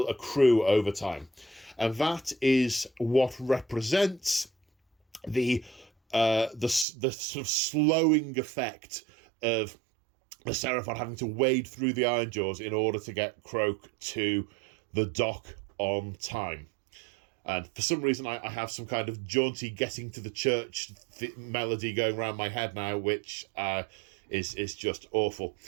accrue over time. And that is what represents the sort of slowing effect of the Seraphon having to wade through the Ironjaws in order to get Croak to the dock on time. And for some reason, I have some kind of jaunty getting to the church melody going around my head now, which is just awful.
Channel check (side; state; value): left; drops out; at 6.9 s